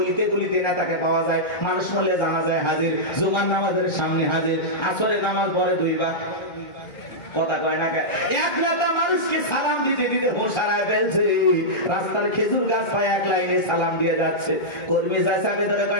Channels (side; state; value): right; late; 1.3 ms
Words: গলিতে নেতাকে পাওয়া যায়। মানুষ মলে জানা যায় হাজির, জুমার নামাজের সামনে হাজির, আসরের নামাজ পড়ে 2 বার। কথা কয় না। এক নেতা মানুষকে সালাম দিতে দিতে হুঁশ হারায় ফেলছে। রাস্তার খেজুর গাছ পায় 1 লাইনে সালাম দিয়ে যাচ্ছে। কর্মী চাচাকে ধরে